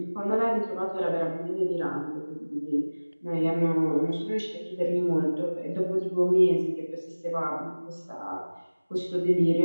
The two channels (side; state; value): both; inverted; correlation -1.00